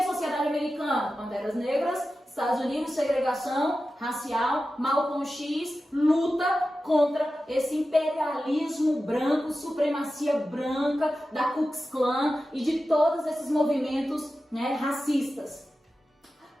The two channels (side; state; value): both; normal; correlation 0.93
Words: sociedade americana? Panteras Negras, Estados Unidos, segregação racial, Malcolm X, luta contra esse imperialismo branco, supremacia branca da Ku Klux Klan e de todos esses movimentos, né, racistas.